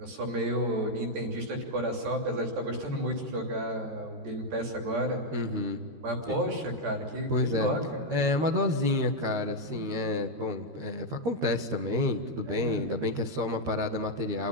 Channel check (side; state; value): left; late; 13 ms